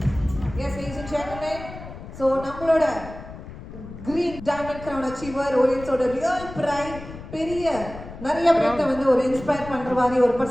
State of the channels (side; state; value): left; noise; rumble, 13 dB below the sound